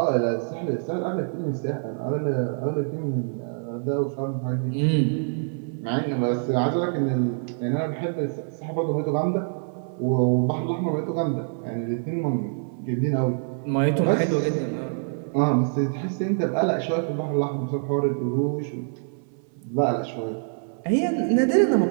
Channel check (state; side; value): silent; left; 58 dB below the other